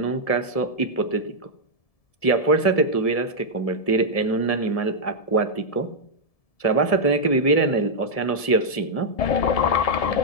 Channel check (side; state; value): right; late; 1.7 ms